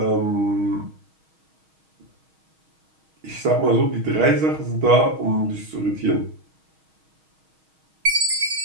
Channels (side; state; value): left; late; 6.3 ms